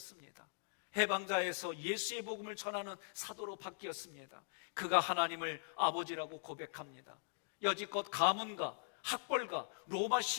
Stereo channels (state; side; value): silent; right; digital silence